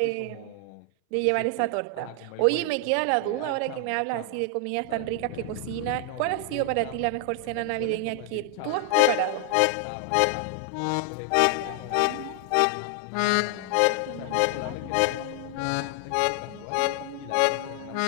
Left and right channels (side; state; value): both; different; correlation 0.00